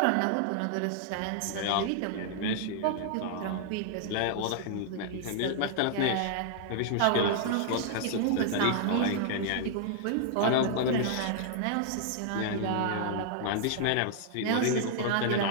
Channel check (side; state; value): both; different; correlation -0.01